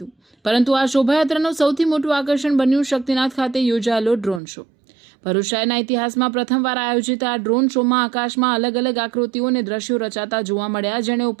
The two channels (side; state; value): left; drops out; at 4.4 s